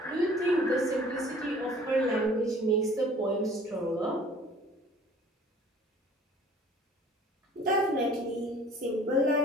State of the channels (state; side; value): normal; both; correlation 0.51